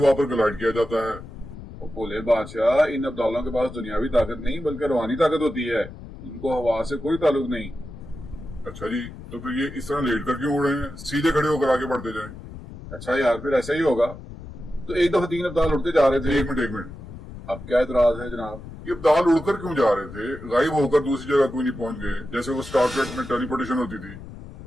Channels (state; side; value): noise; left; rumble, 14 dB below the sound